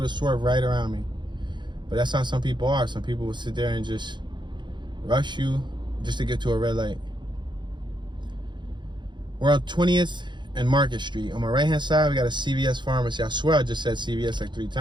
to swerve right around me. But that's how some people are. Some people will sit there and just rush you just to get to a red light. We're on 20th and Market Street. On my right-hand side, we got a CVS pharmacy. I swear I just said CVS like 3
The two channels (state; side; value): late; left; 0.22 ms